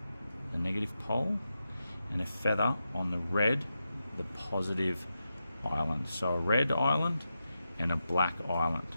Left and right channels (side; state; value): both; inverted; correlation -0.89